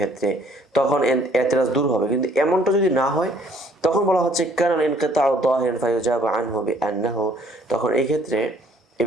তখন ই'তিরাজ দূর হবে। কিন্তু এমনটা যদি না হয়, তখন বলা হচ্ছে কানা ইনকিতাউ যাহিরান ফায়ুজাব আনহু বিআন্নাহু, তখন এই ক্ষেত্রে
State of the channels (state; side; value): normal; both; correlation 0.61